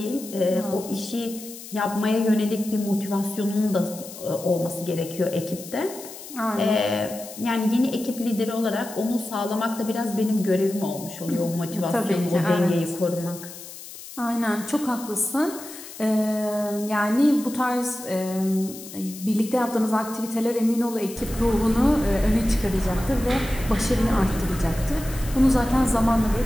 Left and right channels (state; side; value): noise; left; hiss, 14 dB below the sound